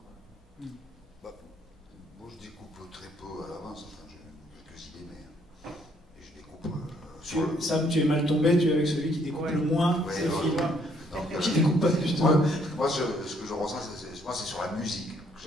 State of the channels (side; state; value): both; normal; correlation 0.67